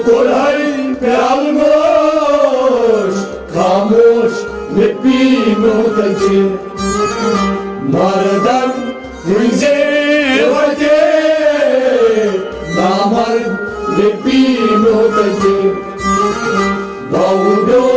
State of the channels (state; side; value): identical; both; correlation 1.00